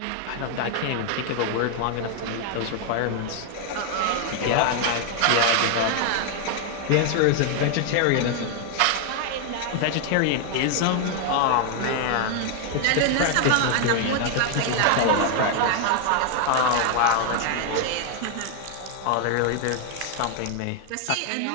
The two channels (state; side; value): different; both; correlation 0.00